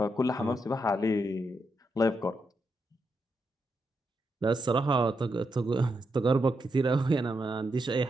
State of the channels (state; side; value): normal; both; correlation 0.83